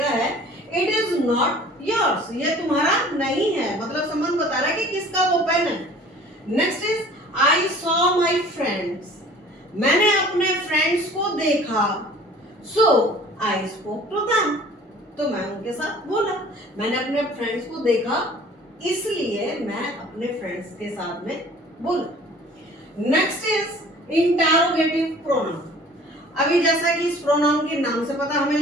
है। इट इज नॉट योर्स, ये तुम्हारा नहीं है, मतलब संबंध बता रहा है कि किसका वो पेन है। Next is I saw my friends, मैंने अपने फ्रेंड्स को देखा। सो आई स्पोक टू देम, तो मैं उनके साथ बोला। मैंने अपने फ्रेंड्स को देखा इसलिए मैं अपने फ्रेंड्स के साथ में बोला। Next is interrogative pronoun. अभी जैसा कि इस प्रोनाउन के नाम से पता हमें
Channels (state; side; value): normal; both; correlation 0.49